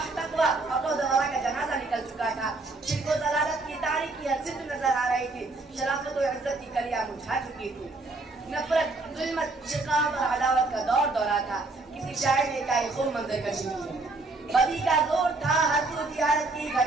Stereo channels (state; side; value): quieter; left; 3.3 dB